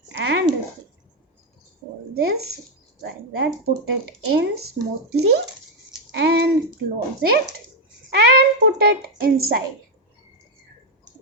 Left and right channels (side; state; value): both; normal; correlation 0.04